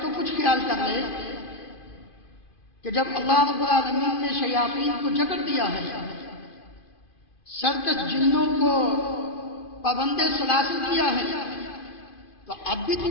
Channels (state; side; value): late; right; 2.5 ms